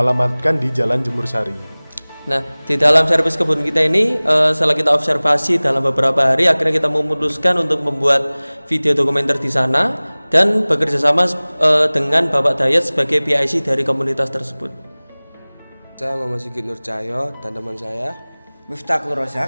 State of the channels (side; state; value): both; inverted; correlation -1.00